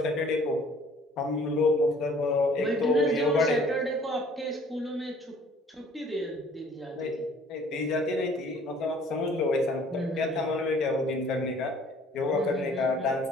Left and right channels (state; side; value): normal; both; correlation 0.55